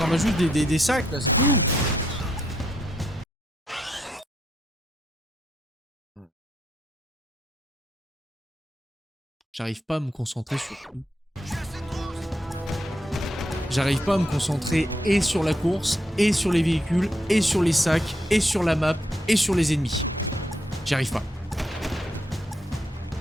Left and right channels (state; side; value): normal; both; correlation 0.79